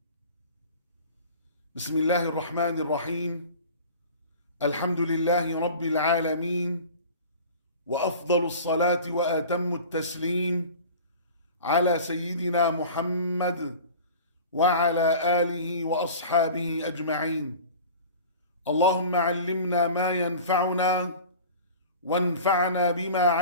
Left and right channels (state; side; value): inverted; both; correlation -0.39